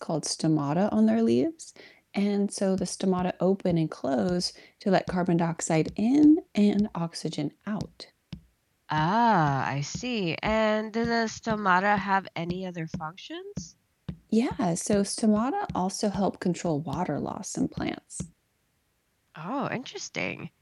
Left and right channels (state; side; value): identical; both; correlation 1.00